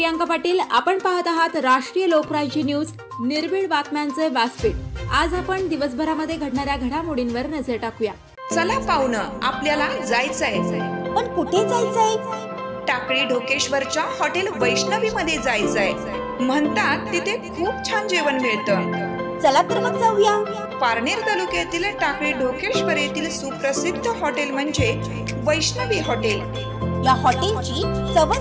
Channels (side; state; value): both; identical; correlation 1.00